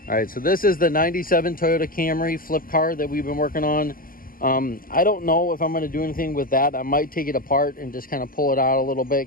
All right, so this is the 97 Toyota Camry Flip car that we've been working on. I don't know if I'm going to do anything with that. I might take it apart and just kind of pull it out a little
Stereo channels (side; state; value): right; late; 0.41 ms